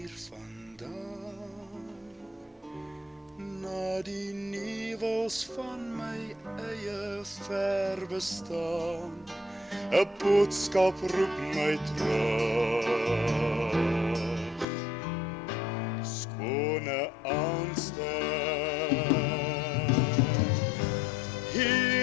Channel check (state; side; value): drops out; right; at 14.7 s